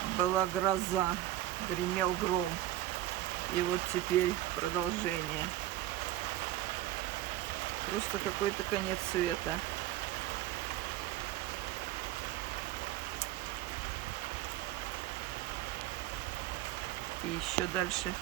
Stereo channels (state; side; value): quieter; left; 14.3 dB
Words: была гроза, гремел гром. И вот теперь продолжение. Просто какой-то конец света. И еще дальше